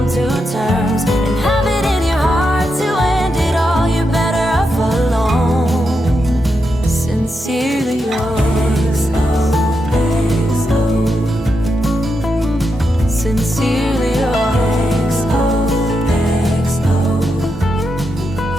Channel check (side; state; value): both; normal; correlation 0.85